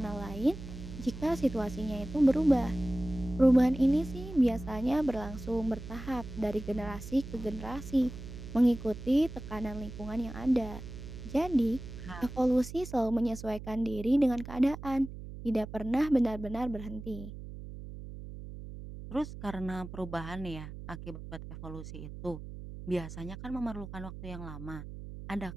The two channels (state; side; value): noise; right; hum, 11 dB below the sound